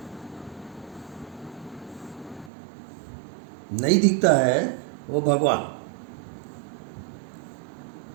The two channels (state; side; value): drops out; left; at 2.5 s